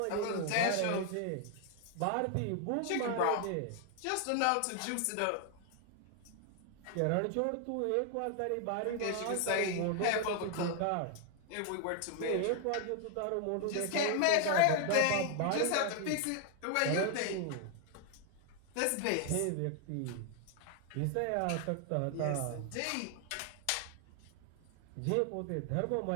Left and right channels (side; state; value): both; different; correlation 0.00